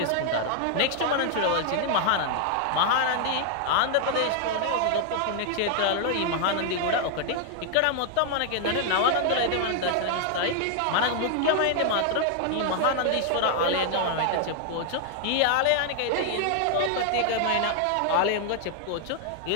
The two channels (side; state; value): both; different; correlation 0.00